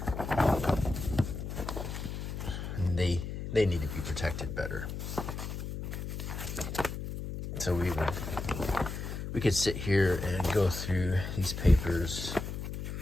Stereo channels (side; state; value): left; noise; hum, 6 dB below the sound